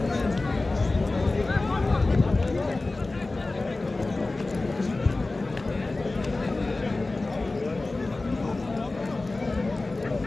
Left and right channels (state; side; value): quieter; right; 3.2 dB